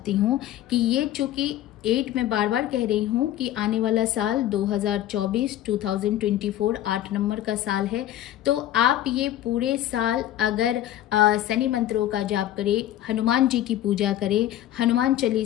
हूँ कि ये चूँकि 8 मैं बार बार कह रही हूँ कि आने वाला साल 2024 8 नंबर का साल है, तो आप ये पूरे साल अगर शनि मंत्रों का जाप करें, हनुमान जी की पूजा करें, हनुमान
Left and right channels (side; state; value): right; quieter; 12.9 dB